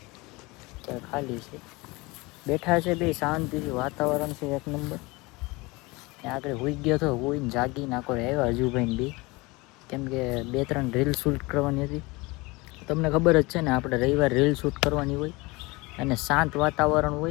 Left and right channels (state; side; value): quieter; right; 23.9 dB